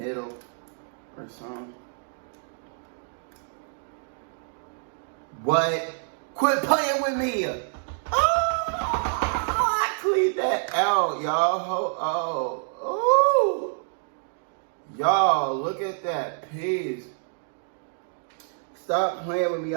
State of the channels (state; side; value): silent; left; digital silence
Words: or something. What? Quit playing with me! Oh, I cleaned that out, y'all. Oh, y'all, look at that piece. Stop playing with me.